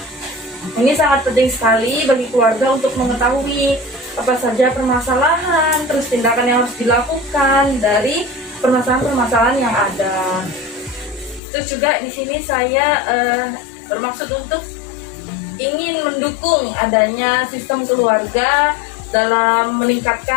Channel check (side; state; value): right; drops out; at 11.4 s